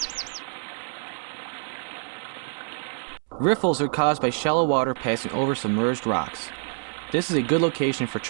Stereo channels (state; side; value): silent; left; 61 dB below the other